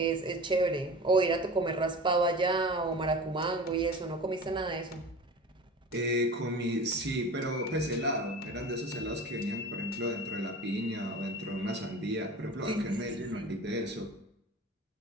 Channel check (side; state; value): both; normal; correlation 0.35